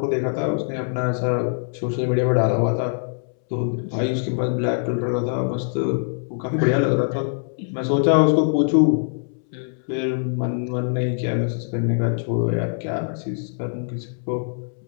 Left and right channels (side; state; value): right; silent; 63 dB below the other